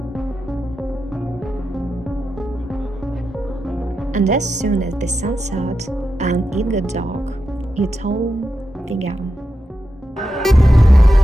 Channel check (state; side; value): normal; both; correlation 0.88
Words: And as soon as the sun set and it got dark, it all began.